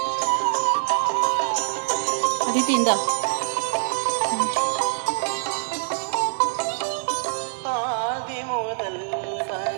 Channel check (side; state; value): left; silent; digital silence